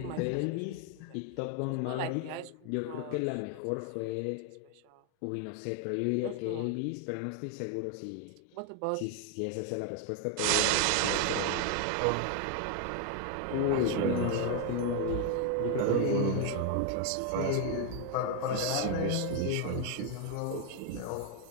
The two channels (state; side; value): different; both; correlation 0.01